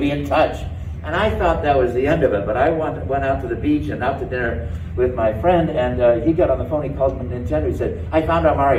in touch. And I thought that was the end of it, but I went out to the beach and out to dinner with my friend, and he got on the phone, he called me Nintendo, he said, I found our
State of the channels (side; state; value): both; identical; correlation 1.00